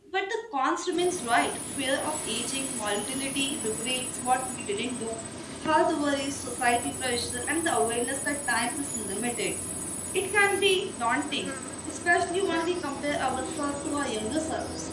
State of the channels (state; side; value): identical; both; correlation 1.00